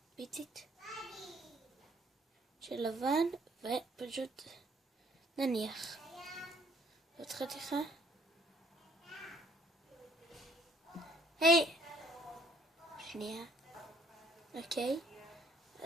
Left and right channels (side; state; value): both; normal; correlation 0.62